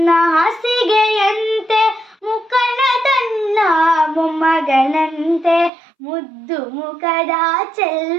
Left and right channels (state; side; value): drops out; left; at 5.7 s